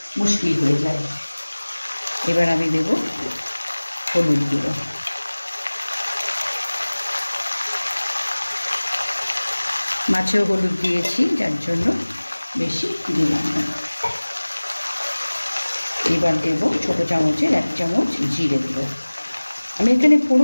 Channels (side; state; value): both; inverted; correlation -1.00